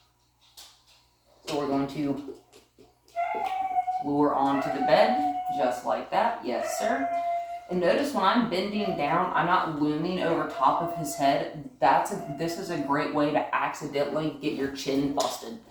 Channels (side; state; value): both; identical; correlation 1.00